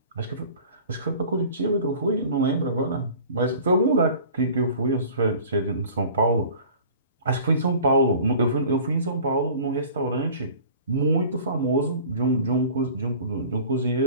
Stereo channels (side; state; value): both; inverted; correlation -0.44